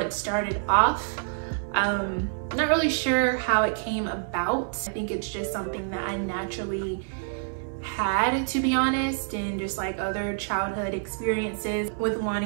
started off. Not really sure how it came about. I think it's just something that I naturally had, to be honest, and just like other childhood experiences with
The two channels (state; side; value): silent; left; 60 dB below the other